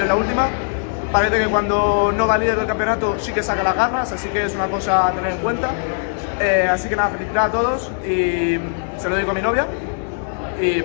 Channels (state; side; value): silent; right; digital silence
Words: en la última. Parece que cuando no va líder del campeonato sí que saca las garras, así que es una cosa a tener en cuenta. Así que nada, felicitar a todos y se lo digo a mi novia. Y